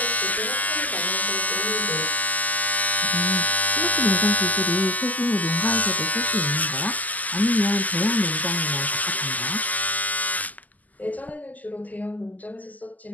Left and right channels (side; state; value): right; late; 0.080 ms